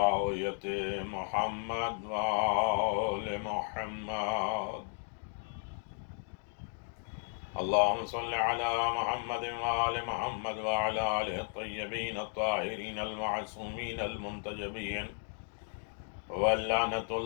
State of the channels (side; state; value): right; silent; 55 dB below the other